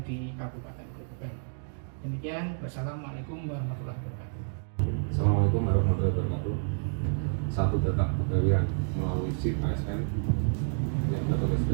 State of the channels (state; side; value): silent; left; digital silence